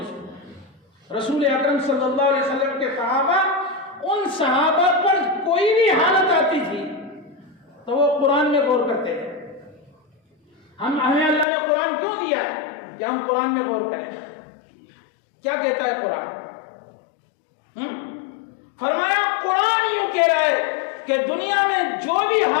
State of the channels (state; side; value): drops out; right; at 11.5 s